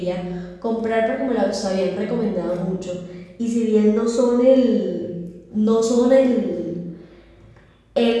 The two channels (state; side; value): identical; both; correlation 1.00